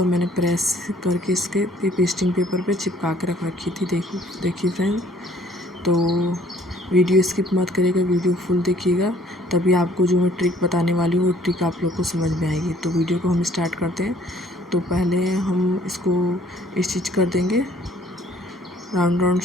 मैंने प्रेस करके इसके पेस्टिंग पेपर पे चिपका के रख रखी थी। देखिए फ्रेंड, तो वीडियो स्किप मत करिएगा, वीडियो फुल देखिएगा, तभी आपको जो मैं ट्रिक बताने वाली हूँ वो ट्रिक आप लोग को समझ में आएगी। तो वीडियो को हम स्टार्ट करते हैं। तो पहले हम इसको स्टिच कर देंगे, राउंड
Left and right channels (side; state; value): both; normal; correlation 0.59